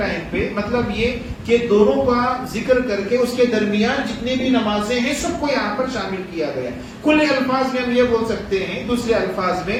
پہ، مطلب یہ کہ دونوں کا ذکر کر کے اس کے درمیان جتنے بھی نمازیں ہیں سب کو یہاں پر شامل کیا گیا. کل الفاظ میں ہم یہ بول سکتے ہیں، دوسرے الفاظ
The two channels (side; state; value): both; identical; correlation 1.00